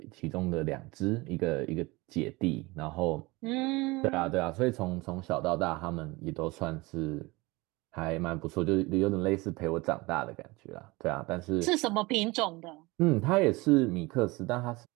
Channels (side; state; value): left; quieter; 23.1 dB